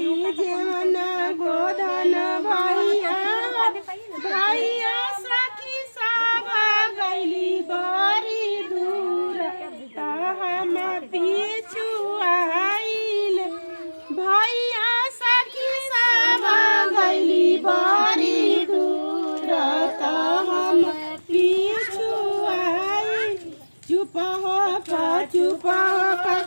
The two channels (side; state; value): both; inverted; correlation -1.00